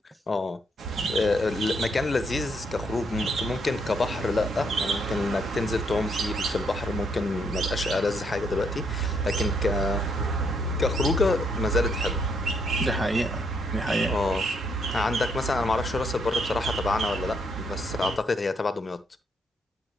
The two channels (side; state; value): both; normal; correlation 0.73